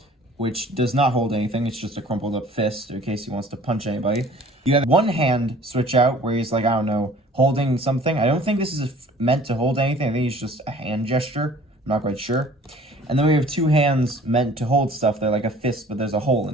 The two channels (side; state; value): both; normal; correlation 0.50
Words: which does not hold anything. It's just a crumpled up fist in case he wants to punch anybody. You have one hand switch out where he's like, I don't know, holding something. I don't think this is meant to hold anything. I think it's just a hand gesture. I'm not quite sure. And then we have two hands meant to hold stuff. They're like a fist, but there's a hole in